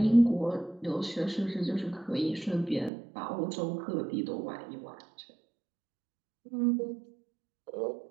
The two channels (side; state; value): left; drops out; at 2.9 s